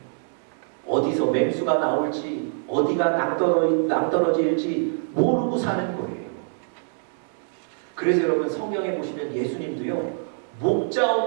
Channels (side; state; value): left; silent; digital silence